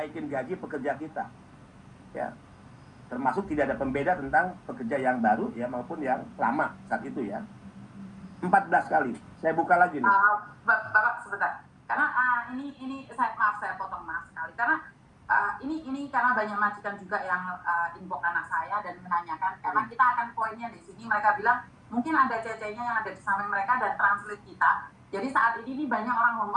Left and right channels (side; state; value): both; identical; correlation 1.00